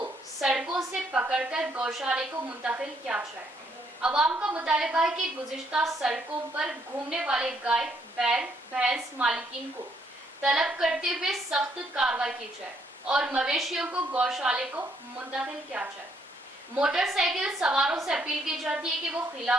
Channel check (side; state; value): both; normal; correlation 0.71